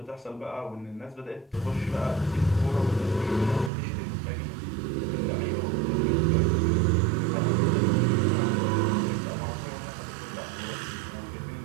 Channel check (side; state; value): left; drops out; at 3.7 s